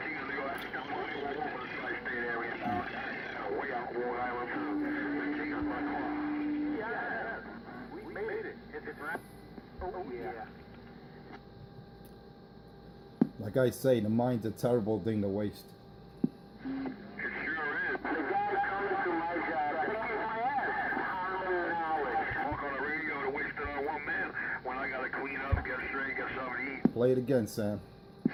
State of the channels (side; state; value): both; identical; correlation 1.00